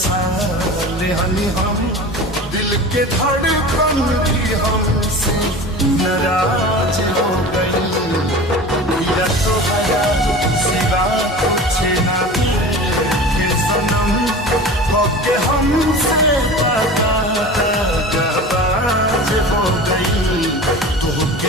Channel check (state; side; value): normal; both; correlation 0.35